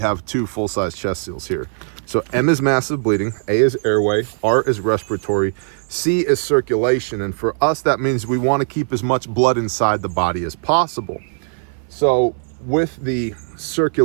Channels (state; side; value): silent; left; 58 dB below the other